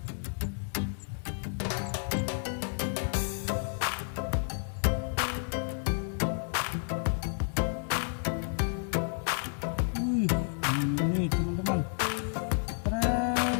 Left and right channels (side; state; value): right; silent; digital silence